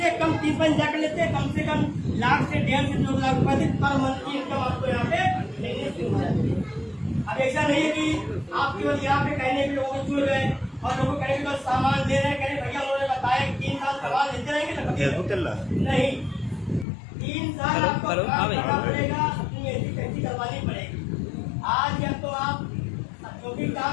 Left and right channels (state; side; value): drops out; right; at 16.9 s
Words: कम 30 जा कर लेते हैं, कम से कम लाख से 1.5 से 2 लाख रुपए पर मंथ की इनकम आपको यहाँ पे मिलने शुरू हो जाती है। अब ऐसा नहीं है कि आप केवल यहाँ पे कहने के लोगों को जुड़ गए और लोगों को कहने के बस सामान दे रहे हैं, कह भैया उन्होंने बताया 3 साल सामान लेते रहेंगे ना, फेसबुक चल रहा है नहीं 3 साल आपको काम करना पड़ेगा, अपनी ऐसी कैसी करवानी पड़ेगी। आज या तो आप जो भी